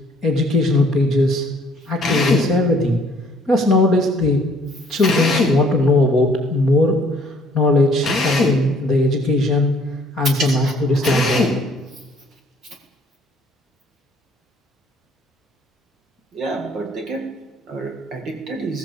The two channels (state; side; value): normal; both; correlation 0.60